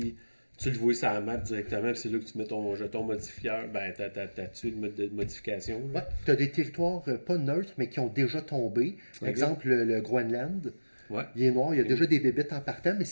tu le vois sur la map directement, puis c'est là que tu mets ton jeton modifieur, ben t'as-tu le mode de modification? Ouais, t'as des territoires pas neutres, mais qui ont déjà tombé. Par exemple, le Groenland. Ouais. Il est noir, il y a déjà des bébites en partant, mais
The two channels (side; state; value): both; inverted; correlation -1.00